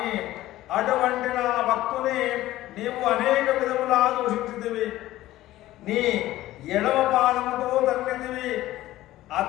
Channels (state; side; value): quieter; right; 15.6 dB